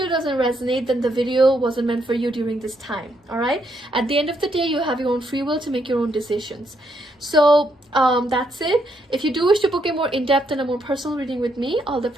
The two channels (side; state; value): both; normal; correlation 0.75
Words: doesn't resonate, then the video wasn't meant for you during this time. All right, at the end of the day, you have your own free will to make your own decisions. So that's it. If you do wish to book a more in-depth and a more personal reading with me, all the